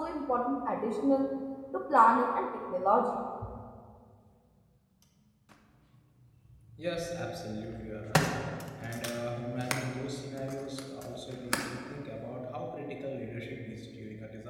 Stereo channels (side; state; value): both; identical; correlation 1.00